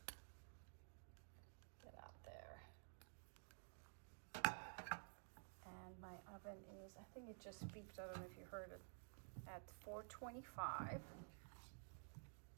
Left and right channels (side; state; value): left; silent; digital silence